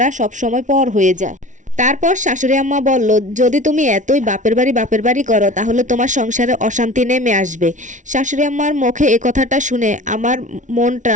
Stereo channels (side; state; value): left; late; 0.37 ms